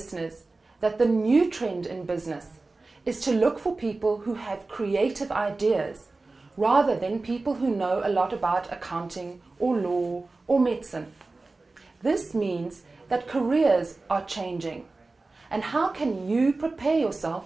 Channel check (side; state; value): left; quieter; 3.5 dB